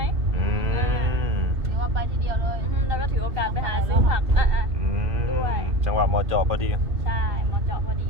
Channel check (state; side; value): late; left; 2.4 ms